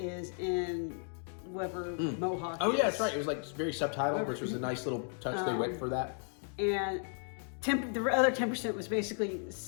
in whoever Mohawk Oh is. yeah, that's right. It was like very subtitled, which was a nice little touch they went for that. And the other 10% was basically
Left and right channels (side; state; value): right; silent; 55 dB below the other